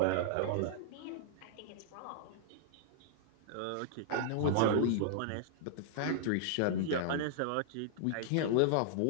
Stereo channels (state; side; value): different; both; correlation -0.01